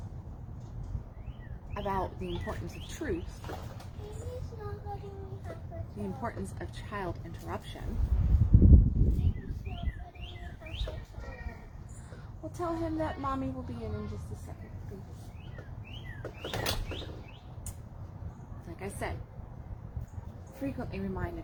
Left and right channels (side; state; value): both; identical; correlation 1.00